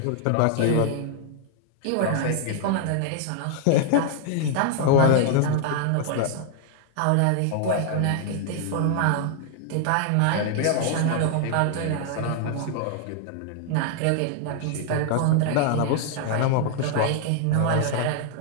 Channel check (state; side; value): different; both; correlation 0.00